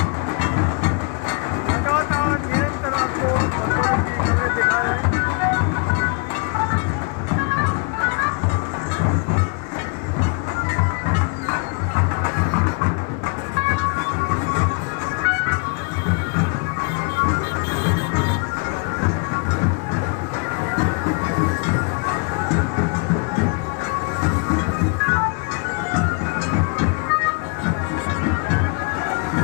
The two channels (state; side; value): quieter; right; 34.4 dB